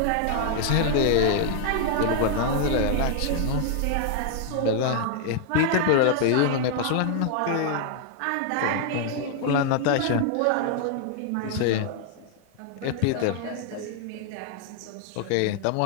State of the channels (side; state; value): both; different; correlation 0.00